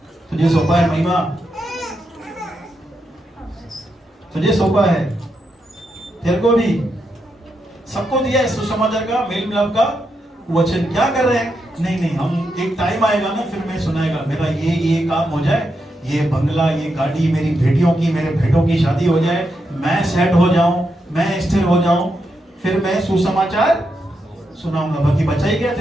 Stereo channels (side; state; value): both; normal; correlation 0.84